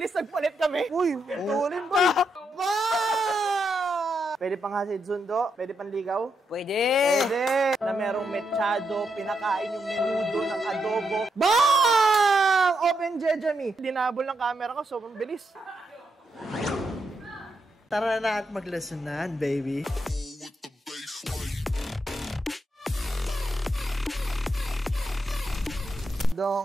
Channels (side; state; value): both; normal; correlation 0.82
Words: nagpalit kami. Uy, tulin ba? Pwede pang hasid sundo? Pwede pang ligaw? Pwede! Pwede! Na merong mechado, pinakain yung menudo ng adobo. Bang! Open Jejami. Dinabol ng camera ko, sobrang bilis. Tara na at maglasunan, baby.